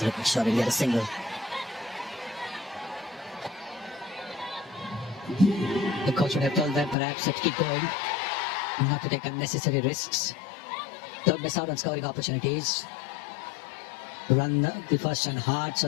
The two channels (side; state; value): right; drops out; at 7.0 s